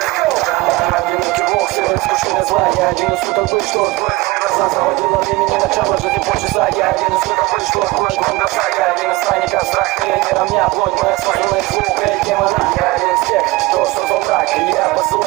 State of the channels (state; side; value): quieter; left; 20.9 dB